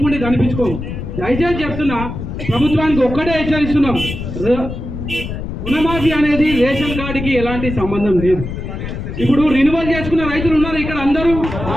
కనిపించుకోము. దయచేసి చెప్తున్నా, ప్రభుత్వానికి ఒక్కటే హెచ్చరిస్తున్నాం, రుణమాఫీ అనేది రేషన్ కార్డుకి ఎలాంటి సంబంధం లేదు. ఇప్పుడు రినివల్ చేసుకున్న రైతులు ఉన్నారు ఇక్కడ, అందరూ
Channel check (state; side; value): noise; left; rumble, 7 dB below the sound